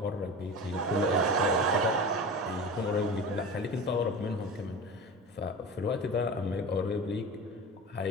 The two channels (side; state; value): both; normal; correlation 0.31